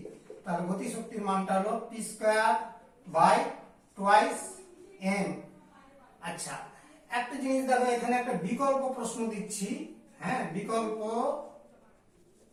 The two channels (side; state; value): both; identical; correlation 1.00